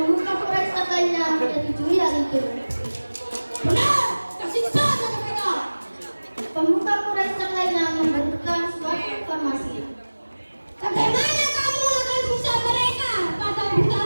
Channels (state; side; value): inverted; both; correlation -1.00